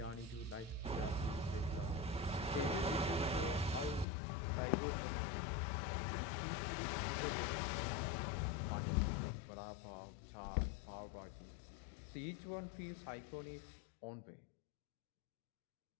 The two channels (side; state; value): right; drops out; at 4.0 s